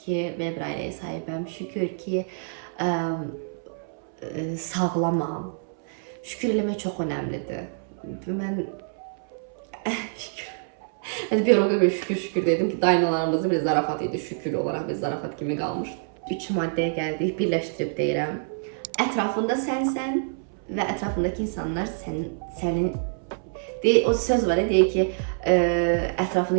ki, belə bir ailəyə sahibəm. Şükür ki, sağlamam. Şükür eləmək çox önəmlidir. Mən şükür. Mən bir ara şükür dedim ki, dayanalarımızın bir zarafat idi. Şükür olaraq bir zarafat kimi qalmış. 3 maddəyə gəldik, birləşdirib deyirəm. Ətrafında sənsən və ətrafındakı insanlar sənin o söz var, deyir ki,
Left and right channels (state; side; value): silent; left; 61 dB below the other